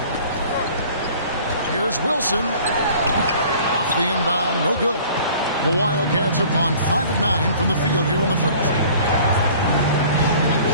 Here's Wilson. Off the inbound, no good. The Wildcats have gone 5 of 9 from the field here in the first.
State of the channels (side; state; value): both; inverted; correlation -0.49